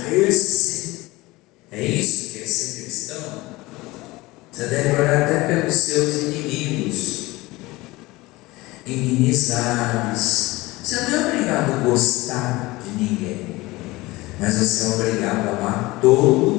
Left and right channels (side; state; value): right; quieter; 20.7 dB